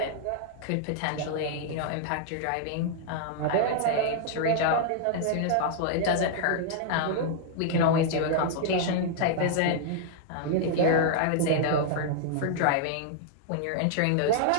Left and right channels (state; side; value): different; both; correlation -0.01